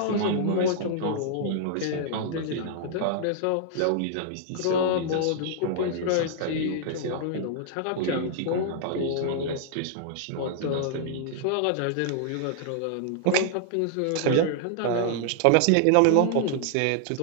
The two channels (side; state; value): both; different; correlation -0.01